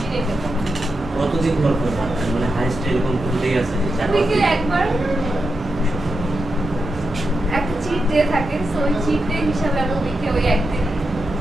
নিয়ে খেতে হবে। কতদিন পর পর ভাত খান? মানে হাইস্ট এরকম কোনটাই আছে যে 4-5 উইকে দিন? একবার একটা চিট ডে থাকে, সো ওই চিট ডে হিসাবে আমি উইকে ওই একদিন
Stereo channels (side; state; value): both; normal; correlation 0.87